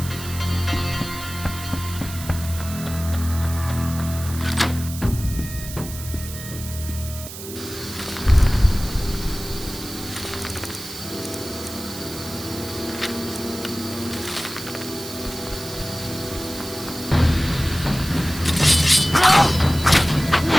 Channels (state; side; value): noise; right; hiss, 11 dB below the sound